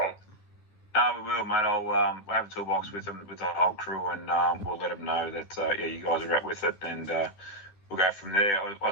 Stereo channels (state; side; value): late; right; 10 ms